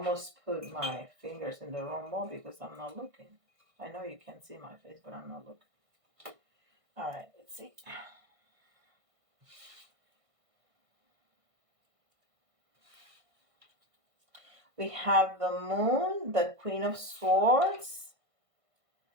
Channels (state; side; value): late; left; 1.5 ms